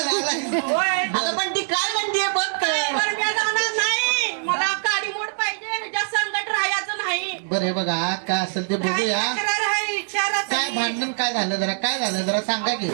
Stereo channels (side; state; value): left; silent; 63 dB below the other